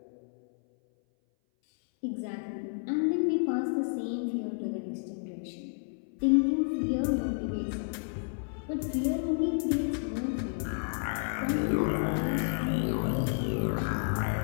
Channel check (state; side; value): silent; right; 57 dB below the other